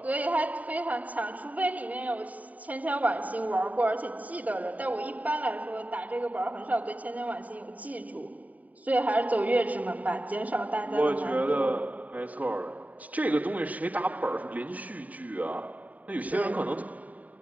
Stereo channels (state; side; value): late; left; 0.072 ms